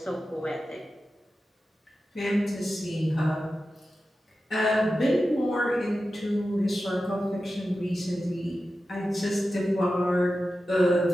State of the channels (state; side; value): normal; both; correlation 0.93